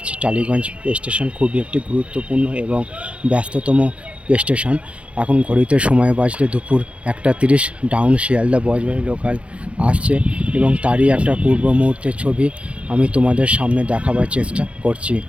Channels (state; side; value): late; left; 0.061 ms